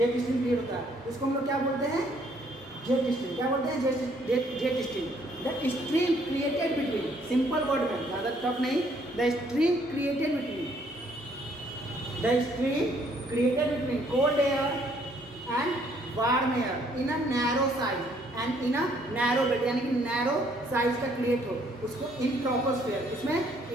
stream create होता है। इसको हम लोग क्या बोलते हैं? Jet stream. क्या बोलते हैं? Jet stream. The stream created between, simple word में, ज़्यादा टफ नहीं, the stream created between cold air and warm air in a narrow size and in a narrow belt, यानी कि नैरो साइज का create हो, उसको इन ट्रोपोस्फेयर, इसमें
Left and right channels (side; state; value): both; normal; correlation 0.65